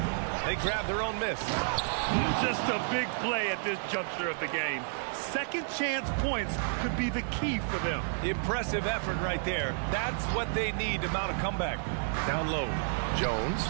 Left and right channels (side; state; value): left; silent; digital silence